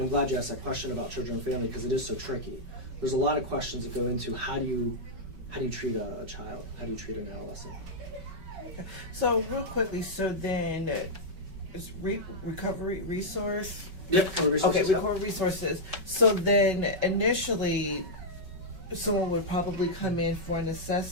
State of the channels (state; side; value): late; left; 5.3 ms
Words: I'm glad you asked that question about children and family because it is so tricky. There's a lot of questions that go into how do you treat a child? How do you treat an adolescent? So real quickly, so then is recovery resource? Yep, recovery resources. Okay, recovery resources. So then initially, someone would probably come in for an